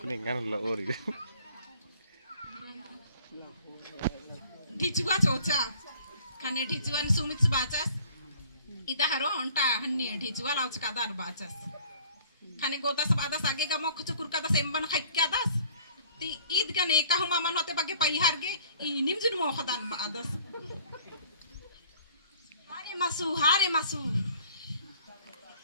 lah ori. ढिचुआ चोचा खाने ढिचुआन सुमित बाचास इता हरो उनटा हन्नी ढिचुआ लाउच कादार बाचास खाने गोदास बादास आगे का मोख चुकुर कादास एम्बन खाइक्या दास ती ईद का नेका हुमा मन होते बागे पैहार गे इनिम जुन मोखदान बादास हारे मासू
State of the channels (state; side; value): inverted; both; correlation -0.54